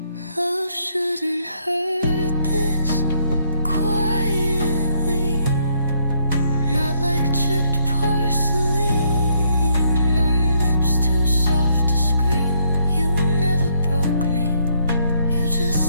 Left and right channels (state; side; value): inverted; both; correlation -0.71